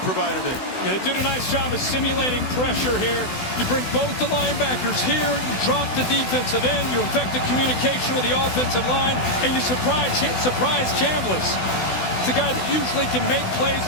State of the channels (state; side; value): late; right; 16 ms